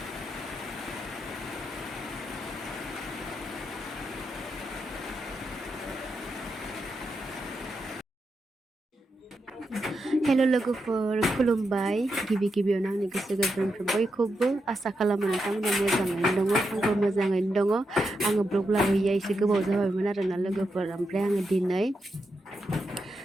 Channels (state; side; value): normal; both; correlation 0.86